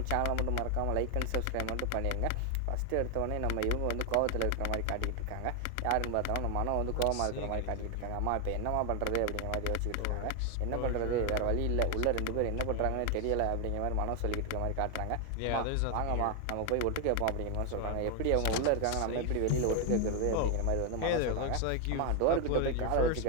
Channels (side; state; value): both; different; correlation 0.01